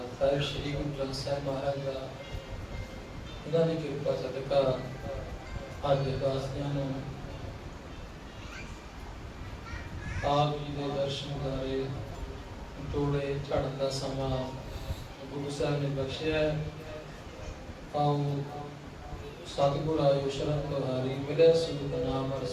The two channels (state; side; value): identical; both; correlation 1.00